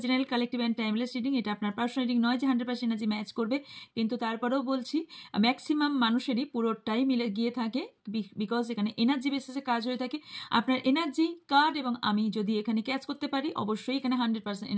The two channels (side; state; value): both; identical; correlation 1.00